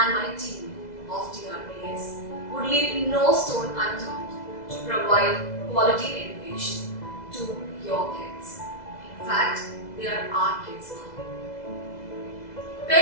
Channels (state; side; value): late; right; 2.0 ms